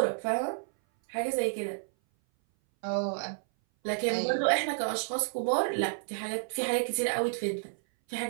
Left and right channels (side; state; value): left; silent; 57 dB below the other